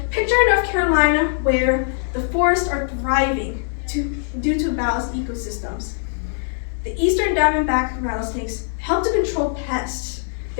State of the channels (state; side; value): silent; right; 65 dB below the other